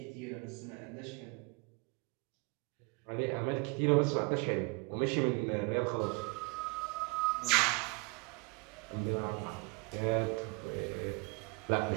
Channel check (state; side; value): quieter; left; 29.9 dB